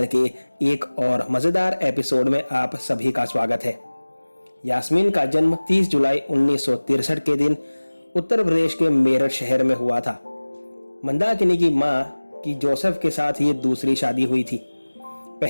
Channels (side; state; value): both; inverted; correlation -1.00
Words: के एक और मज़ेदार एपिसोड में आप सभी का स्वागत है। यास्मीन का जन्म 30 जुलाई 1963 के दिन उत्तर प्रदेश के मेरठ शहर में हुआ था। मंदाकिनी की मां की जोसेफ के साथ ये दूसरी शादी हुई थी।